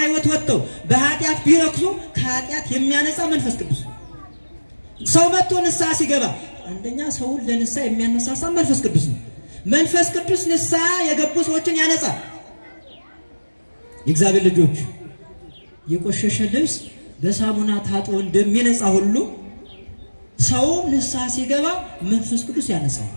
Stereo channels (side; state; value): both; inverted; correlation -1.00